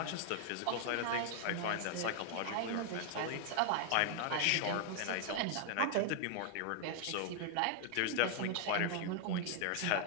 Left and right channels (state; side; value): different; both; correlation 0.00